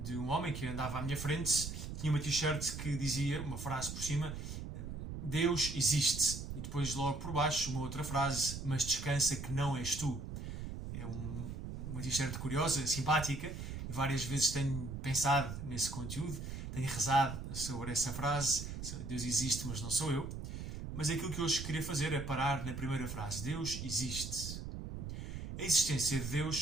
um homem que andava à minha frente, tinha uma t-shirt que dizia, uma frase por cima, Deus existe. E depois logo por baixo uma outra frase, mas descansa que não és tu. É uma t-shirt curiosa, simpática, e várias vezes tenho pensado nesse conteúdo, tenho rezado sobre essa frase, Deus existe mas não sou eu. Mas aquilo que hoje queria fazer é parar na primeira frase, Deus existe. A existência de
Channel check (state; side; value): noise; right; rumble, 7 dB below the sound